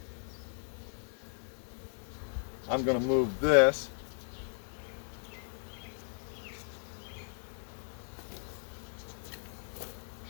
I'm going to move this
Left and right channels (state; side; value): silent; right; digital silence